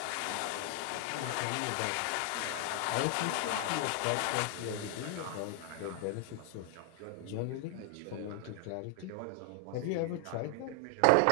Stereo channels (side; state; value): both; different; correlation 0.00